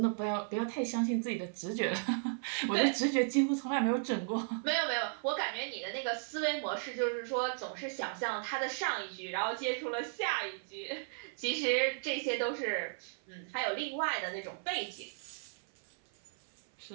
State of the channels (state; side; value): silent; left; 54 dB below the other